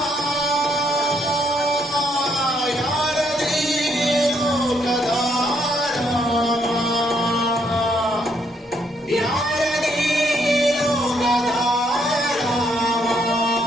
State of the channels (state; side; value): normal; both; correlation 0.72